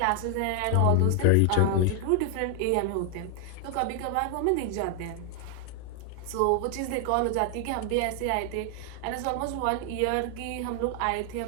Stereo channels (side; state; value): both; different; correlation 0.00